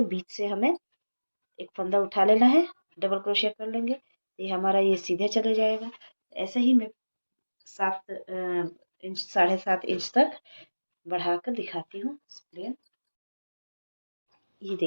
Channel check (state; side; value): inverted; both; correlation -1.00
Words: बीच से हमें एक फंदा उठा लेना है, डबल क्रोशिया कर लेंगे, ये हमारा ये सीधे चले जाएगा। ऐसे ही मैं 7 इंच साढ़े 7 इंच तक बढ़ाकर दिखाती हूँ प्लेन। ये